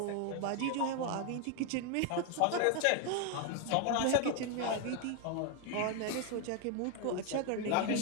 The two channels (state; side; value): different; both; correlation 0.01